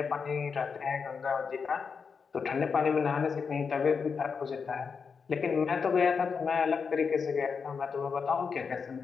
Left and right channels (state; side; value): quieter; right; 5.7 dB